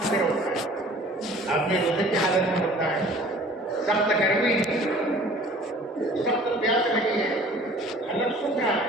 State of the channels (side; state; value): both; normal; correlation 0.49